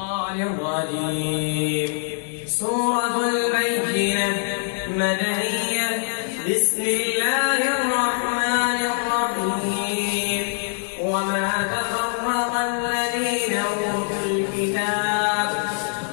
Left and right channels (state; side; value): silent; right; digital silence